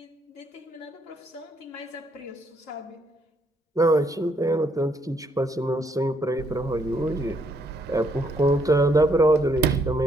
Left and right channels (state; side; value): normal; both; correlation 0.71